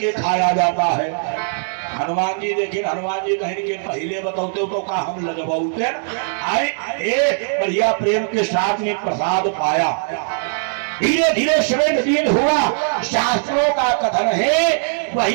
खाया जाता है। हनुमान जी देखिए हनुमान जी कहीं के पहले बताते तो का हम लगवाते आए बढ़िया प्रेम के साथ में प्रसाद पाया। धीरे धीरे समय दिन हुआ शास्त्रों का कथन है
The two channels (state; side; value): silent; left; 66 dB below the other